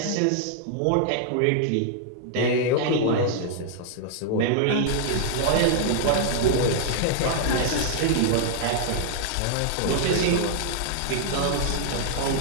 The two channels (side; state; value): both; different; correlation -0.01